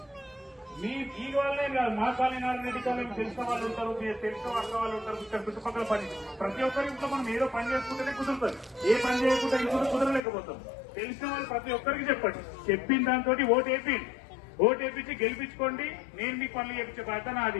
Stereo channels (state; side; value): drops out; right; at 10.2 s